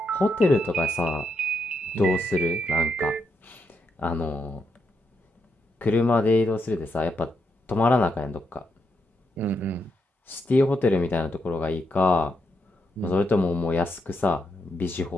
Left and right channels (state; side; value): normal; both; correlation 0.81